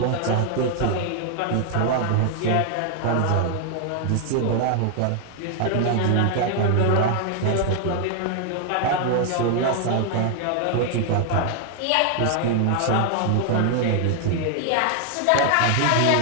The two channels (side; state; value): both; different; correlation 0.00